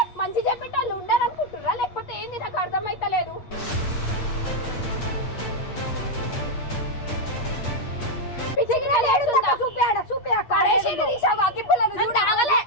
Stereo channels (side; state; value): right; late; 8.4 ms